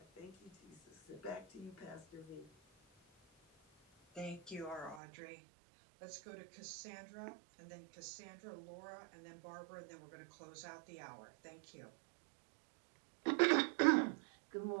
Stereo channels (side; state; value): left; drops out; at 5.0 s